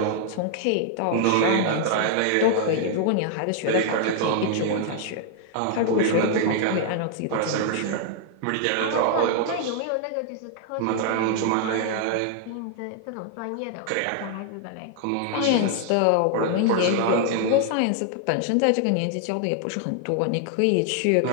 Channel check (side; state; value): both; different; correlation 0.00